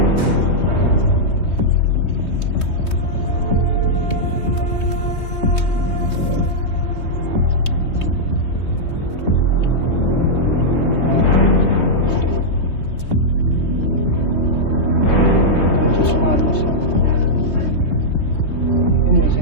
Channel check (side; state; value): right; late; 3.2 ms